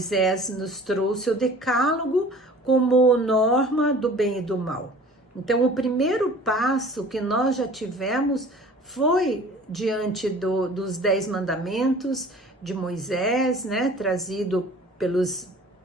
nos trouxe o decálogo como norma do bem e do mal. Então, o primeiro passo que nós já tivemos foi diante dos 10 mandamentos de Moisés, né, trazido pelos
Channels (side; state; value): both; normal; correlation 0.46